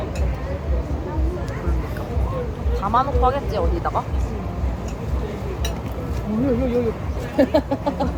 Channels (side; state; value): both; identical; correlation 1.00